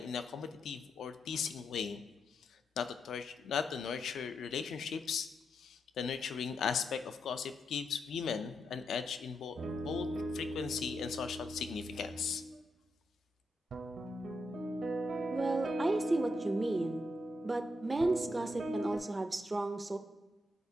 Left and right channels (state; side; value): normal; both; correlation 0.83